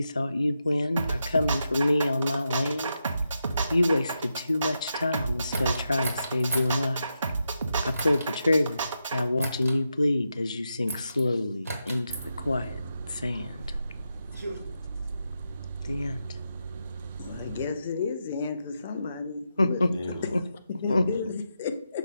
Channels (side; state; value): both; inverted; correlation -0.86